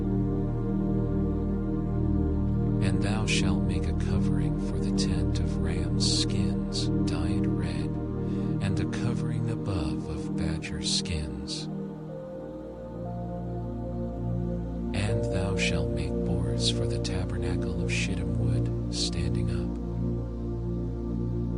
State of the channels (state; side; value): identical; both; correlation 1.00